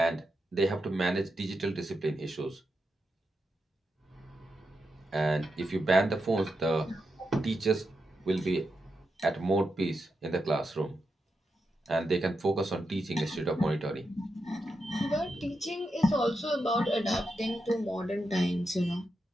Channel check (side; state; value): both; normal; correlation 0.86